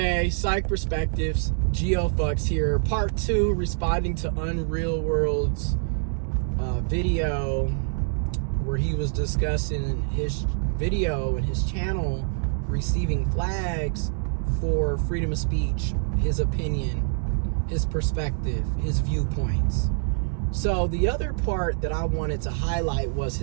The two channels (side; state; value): left; silent; digital silence